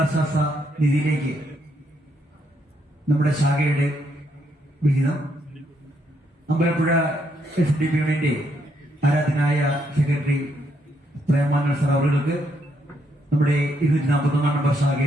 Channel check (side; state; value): both; normal; correlation 0.75